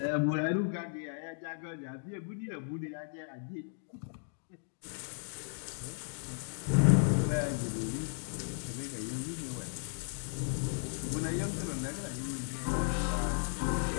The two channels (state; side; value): silent; right; digital silence